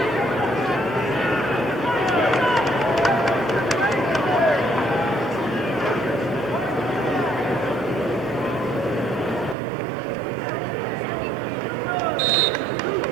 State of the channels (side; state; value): left; drops out; at 9.6 s